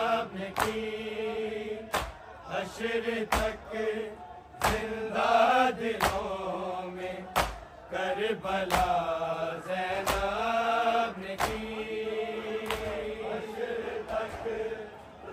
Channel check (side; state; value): both; identical; correlation 1.00